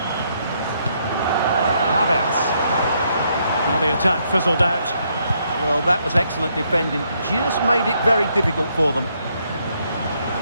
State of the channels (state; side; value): inverted; both; correlation -0.74